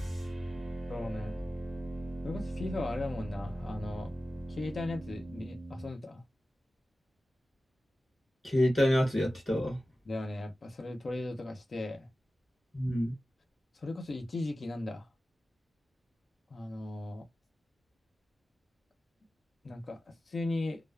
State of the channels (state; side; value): normal; both; correlation 0.95